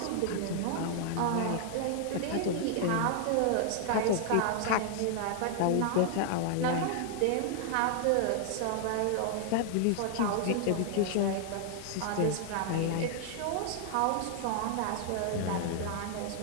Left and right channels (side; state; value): both; different; correlation 0.00